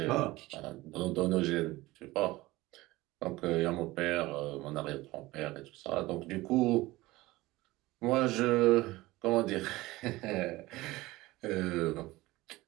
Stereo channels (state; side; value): quieter; left; 19.3 dB